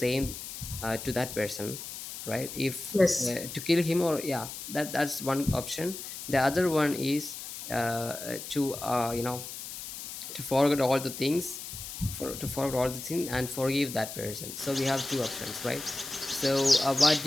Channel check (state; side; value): noise; left; hiss, 9 dB below the sound